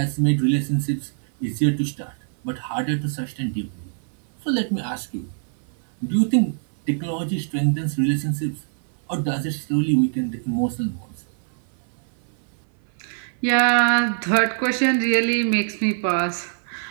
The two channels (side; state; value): left; silent; 58 dB below the other